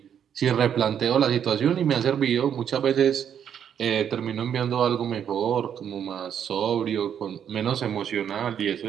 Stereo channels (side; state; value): left; quieter; 8.7 dB